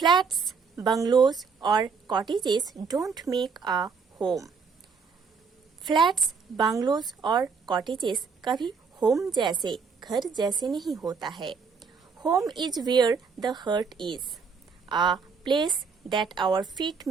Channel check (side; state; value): left; quieter; 5.4 dB